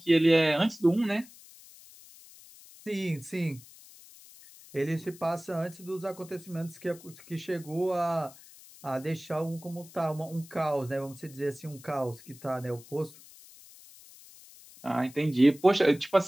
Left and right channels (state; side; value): noise; left; hiss, 21 dB below the sound